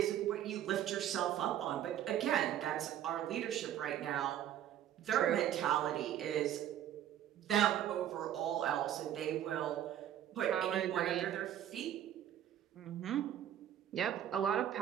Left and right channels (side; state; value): left; quieter; 11.1 dB